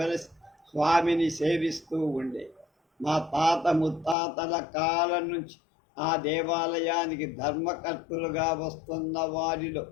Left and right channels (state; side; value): drops out; right; at 4.2 s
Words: స్వామిని సేవిస్తూ ఉండే. మా తాత ముత్తాతల కాలం నుంచి ఆ దేవాలయానికి ధర్మకర్తలుగా వస్తున్న వారిలో